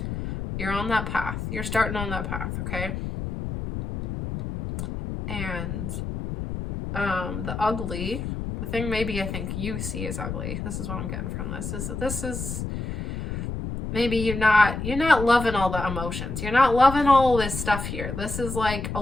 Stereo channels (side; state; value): left; noise; rumble, 5 dB below the sound